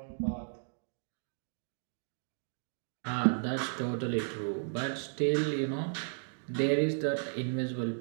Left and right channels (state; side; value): silent; left; digital silence